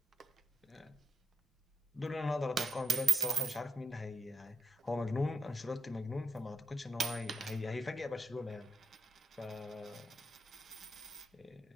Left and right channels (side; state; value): both; normal; correlation 0.81